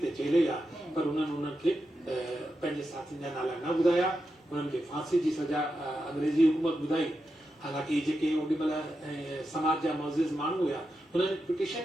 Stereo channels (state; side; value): normal; both; correlation 0.88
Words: ते झेले हा, पर हुननि खे पंहिंजे साथियुनि जा नाला न ॿुधाया। हुननि खे फांसी जी सजा अंग्रेज़ी हुकूमत ॿुधाई। हालांकि जेके ओॾीमहिल समाज जा मुअज़्ज़िज़ माण्हू हुआ हुननि